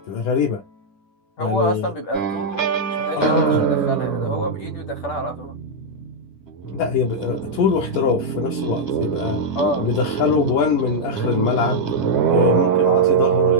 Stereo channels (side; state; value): right; late; 10 ms